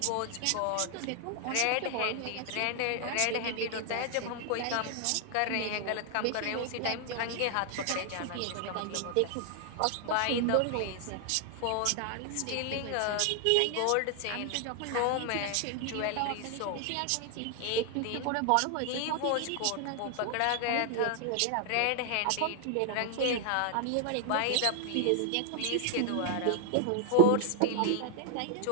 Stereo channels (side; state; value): both; different; correlation 0.00